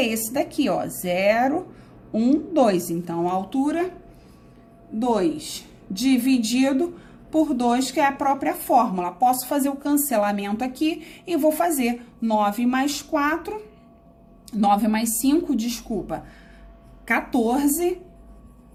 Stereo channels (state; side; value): identical; both; correlation 1.00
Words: esse daqui, ó, 0, 1, 2. Então, a altura, 2. Dividido por 2, que é a própria fórmula. Posso fazer o cancelamento aqui e vou fazer 9 mais 4, 9 mais 5, desculpa, 14